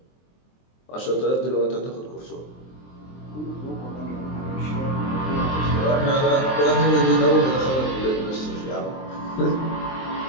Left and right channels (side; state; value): right; late; 23 ms